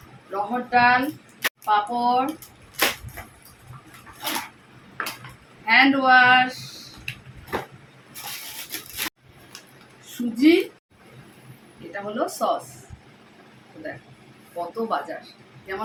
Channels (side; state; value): both; identical; correlation 1.00